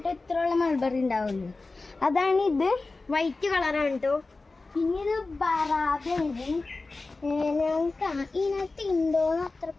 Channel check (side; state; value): right; quieter; 3.5 dB